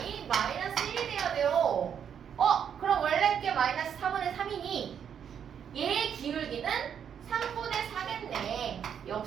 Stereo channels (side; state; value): left; quieter; 8.2 dB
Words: 마이너스 1이 돼야 돼요. 그럼 원래 게 마이너스 4분의 3이니 얘의 기울기는 3분의 4겠네.